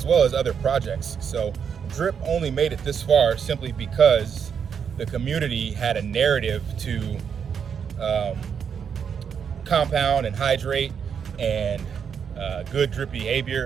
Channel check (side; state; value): left; quieter; 7.2 dB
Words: well as other projects. So Drip only made it this far simply because the community had a narrative to compound and hydrate and good drip